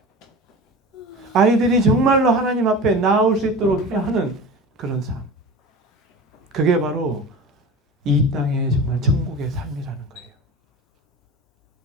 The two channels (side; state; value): both; normal; correlation 0.34